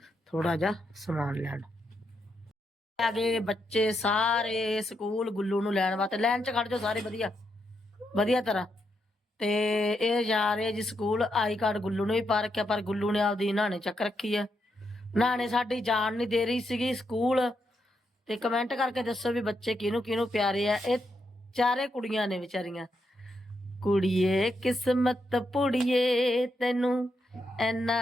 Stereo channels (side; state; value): both; normal; correlation 0.81